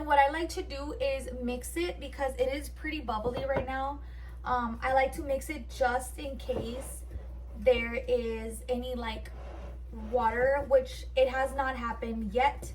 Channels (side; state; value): both; identical; correlation 1.00